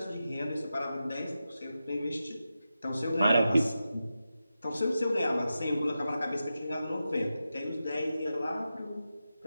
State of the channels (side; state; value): both; inverted; correlation -0.91